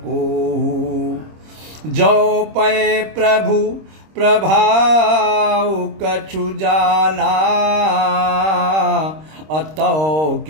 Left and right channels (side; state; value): left; late; 26 ms